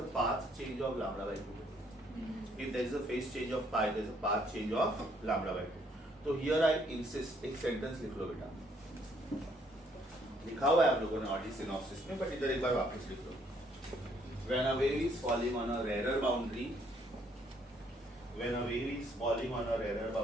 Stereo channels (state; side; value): normal; both; correlation 0.67